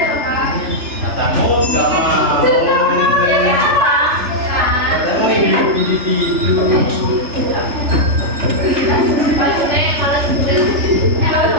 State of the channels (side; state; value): left; late; 3.3 ms